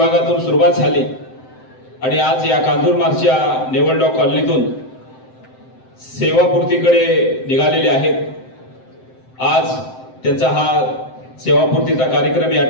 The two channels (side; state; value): right; late; 7.8 ms